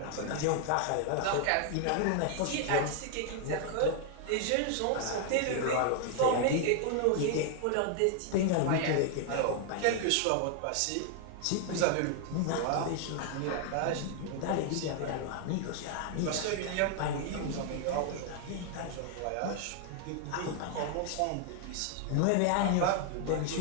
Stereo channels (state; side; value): different; both; correlation 0.00